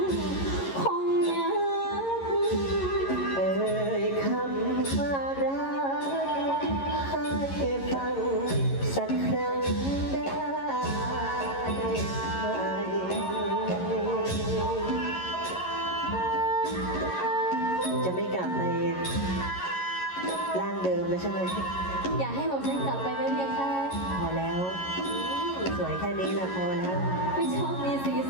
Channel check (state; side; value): late; right; 11 ms